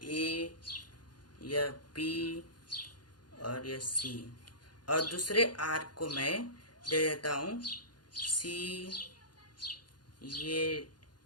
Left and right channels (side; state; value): right; late; 0.70 ms